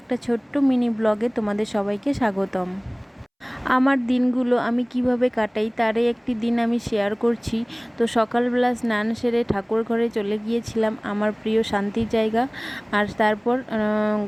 ছোট্ট মিনি ব্লগে তোমাদের সবাইকে স্বাগতম। আমার দিনগুলো আমি কিভাবে কাটাই তারই একটি দিন আমি শেয়ার করছি। তো সকালবেলা স্নান সেরে ঠাকুর ঘরে চলে গিয়েছিলাম, আমার প্রিয় শান্তির জায়গা। আর তারপর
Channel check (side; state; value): both; identical; correlation 1.00